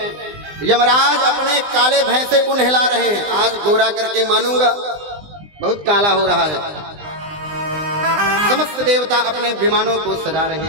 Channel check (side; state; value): left; late; 20 ms